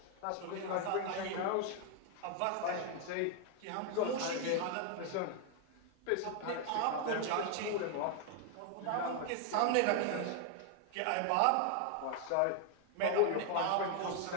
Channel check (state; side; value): different; both; correlation 0.00